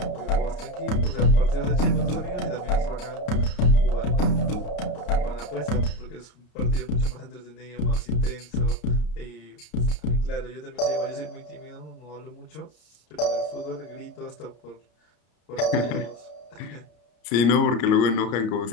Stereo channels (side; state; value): right; late; 33 ms